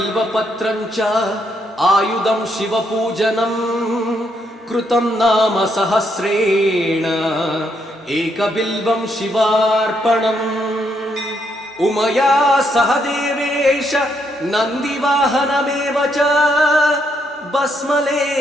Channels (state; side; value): normal; both; correlation 0.75